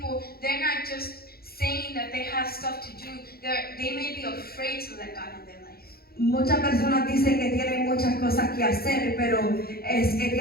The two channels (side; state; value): right; late; 0.44 ms